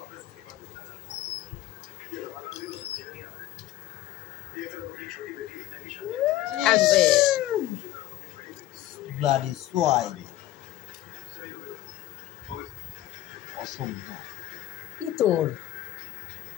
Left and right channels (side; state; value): right; quieter; 14.3 dB